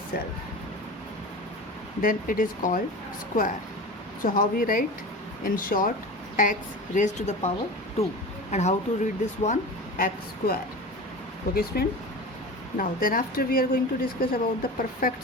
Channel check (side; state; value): both; normal; correlation 0.32